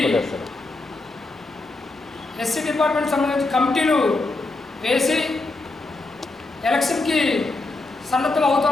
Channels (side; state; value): right; quieter; 3.2 dB